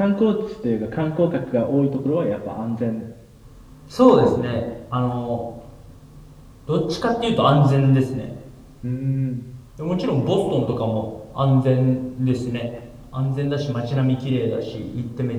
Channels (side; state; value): both; identical; correlation 1.00